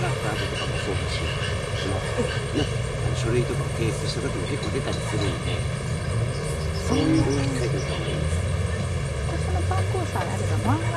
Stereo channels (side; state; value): both; identical; correlation 1.00